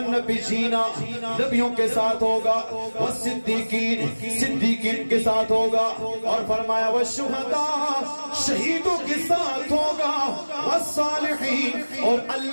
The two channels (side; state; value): both; inverted; correlation -1.00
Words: النبیین، نبیوں کے ساتھ ہوگا، والصدیقین، صدیقین کے ساتھ ہوگا، اور فرمایا والشہداء، شہیدوں کے ساتھ ہوگا، والصالحین، اور